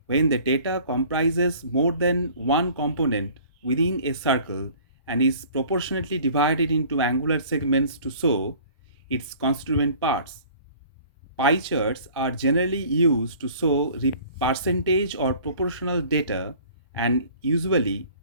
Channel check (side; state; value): both; inverted; correlation -0.49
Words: when the data comprises more than one component within a circle and is proportionately divided into angular segments to show its constituent parts. Pie charts are generally used to show percentage or proportional data, and usually